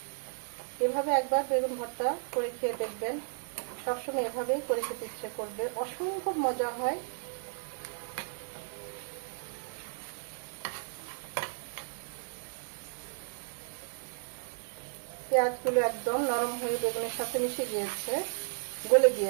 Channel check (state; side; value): silent; left; digital silence